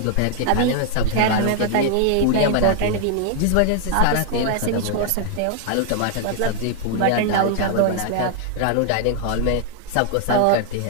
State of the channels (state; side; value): different; both; correlation 0.00